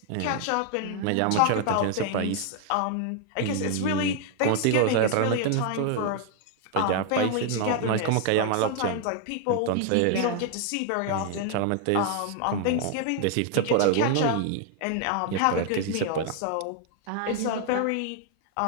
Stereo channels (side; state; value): both; different; correlation 0.00